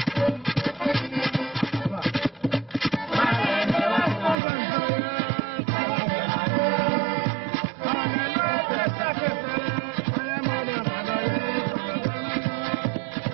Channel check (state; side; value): drops out; left; at 4.4 s